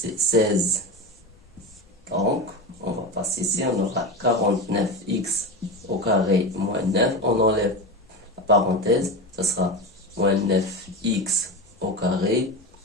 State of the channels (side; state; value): both; normal; correlation 0.22